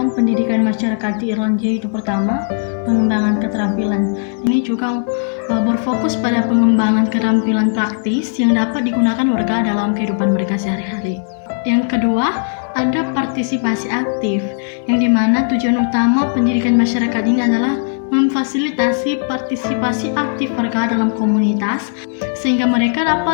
pendidikan masyarakat di Irlandia itu pertama, pengembangan keterampilan. Ini juga berfokus pada pengembangan keterampilan praktis yang dapat digunakan warga dalam kehidupan mereka sehari-hari. Yang kedua, ada partisipasi aktif, yang dimana tujuan utama pendidikan masyarakat ini adalah memfasilitasi partisipasi aktif warga dalam komunitas sehingga mereka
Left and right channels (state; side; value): silent; right; digital silence